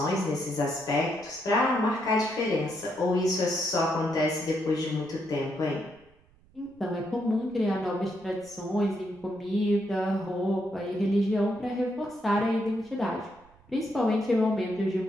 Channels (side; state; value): right; noise; rumble, 29 dB below the sound